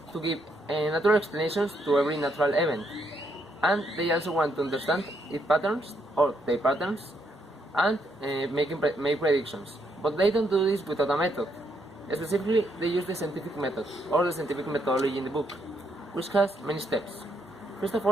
to give natural explanations to every natural event, and they also want to understand its patterns or their patterns and make predictions. But they don't do this without a method. Specifically, they use the scientific method or the scientific methodology in the book, which has many steps. First of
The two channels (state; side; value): normal; both; correlation 0.75